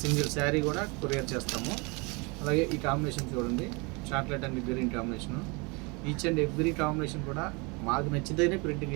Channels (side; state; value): left; quieter; 29.0 dB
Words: సింగిల్ శారీ కూడా కొరియర్ చేస్తాము. అలాగే ఈ కాంబినేషన్ చూడండి, chocolate and green combination. Each and every combination కూడా మాకు నచ్చితేనే ప్రింటింగ్